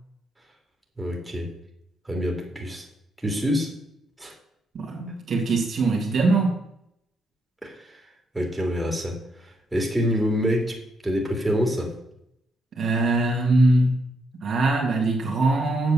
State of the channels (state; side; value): normal; both; correlation 0.78